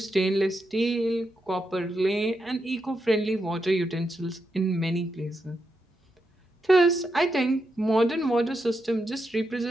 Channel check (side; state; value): both; normal; correlation 0.84